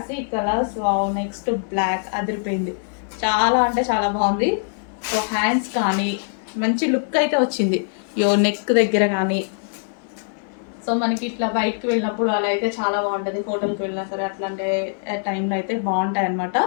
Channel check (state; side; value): silent; right; 64 dB below the other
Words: కలర్స్. నెక్స్ట్ బ్లాక్ అదిరిపోయింది, చాలా అంటే చాలా బాగుంది. సో హ్యాండ్స్ కానీ మంచి లుక్ అయితే వచ్చింది, నెక్ దగ్గర కానీ. సో మనకి ఇట్లా బయటకు వెళ్ళినప్పుడు అలా అయితే చాలా బాగుంటుంది, హోటల్కి వెళ్ళినా సరే అట్లాంటి టైంలో అయితే బాగుంటాయి అనమాట.